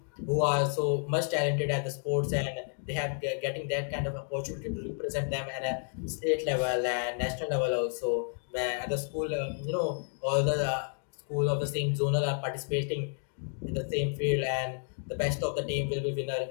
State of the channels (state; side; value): silent; right; 57 dB below the other